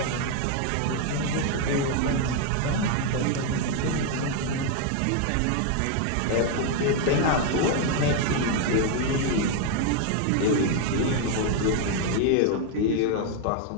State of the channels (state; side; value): different; both; correlation 0.01